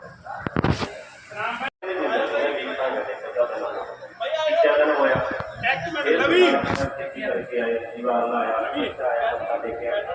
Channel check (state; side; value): identical; both; correlation 1.00